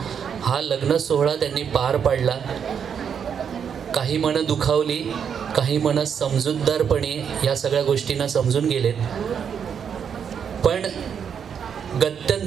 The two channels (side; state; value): left; quieter; 7.5 dB